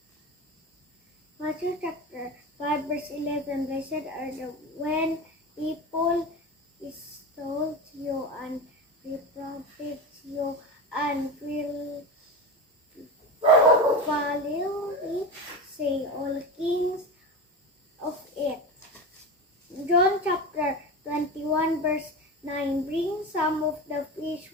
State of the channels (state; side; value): normal; both; correlation 0.24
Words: Matthew chapter 5 verse 11. Blessed are the when people insult you and reprobate you and will foully say all kings of it. John chapter 21 verse 9. Bring some of the fish